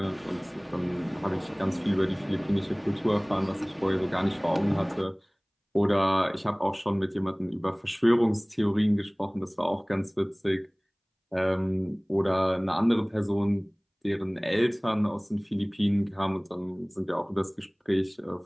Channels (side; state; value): both; identical; correlation 1.00